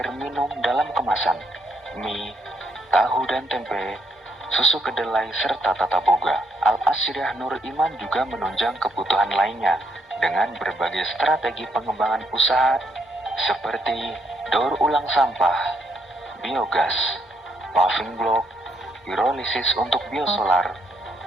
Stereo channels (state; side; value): normal; both; correlation 0.73